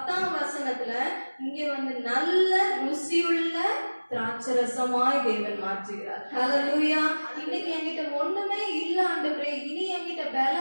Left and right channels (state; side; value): inverted; both; correlation -1.00